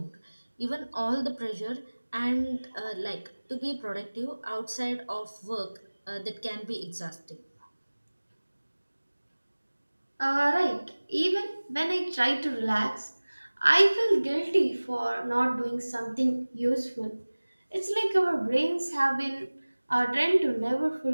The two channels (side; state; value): both; inverted; correlation -1.00